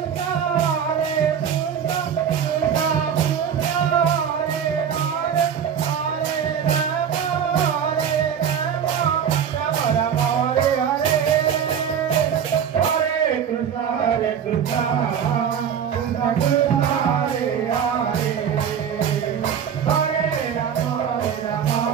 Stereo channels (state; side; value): quieter; left; 8.1 dB